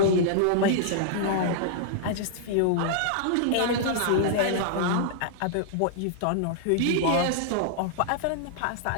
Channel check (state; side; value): different; both; correlation -0.01